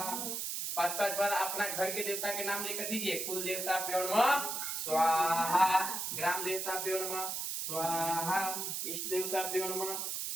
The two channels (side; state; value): right; noise; hiss, 2 dB below the sound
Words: 5-5 बार अपना घर के देवता के नाम लेकर दीजिए। कुल देवता प्योण स्वाहा, ग्राम देवता प्योण स्वाहा, इष्ट देवता प्योण